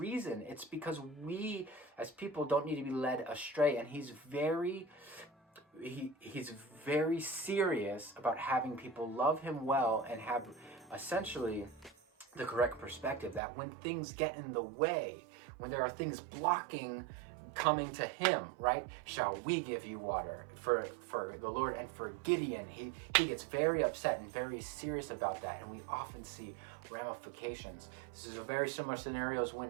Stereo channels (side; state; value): left; drops out; at 13.4 s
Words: It's because we as people don't need to be led astray, and he's very serious about having people love him well and have essentially the correct perspective, that when things get in the way, when there are things blocking coming to him, right? "Shall we give you water?" For the Lord and for Gideon, he gets very upset and very serious about that, and we often see ramifications. This is a very similar scenarios